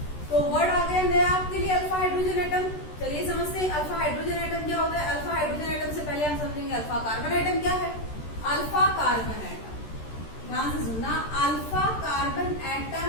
तो वर्ड आ गया नया आपके लिए, अल्फा हाइड्रोजन एटम। चलिए समझते हैं अल्फा हाइड्रोजन एटम क्या होता है। अल्फा हाइड्रोजन एटम से पहले हम समझेंगे अल्फा कार्बन एटम क्या है। अल्फा कार्बन एटम, ध्यान से सुनना, अल्फा कार्बन एटम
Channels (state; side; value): late; right; 13 ms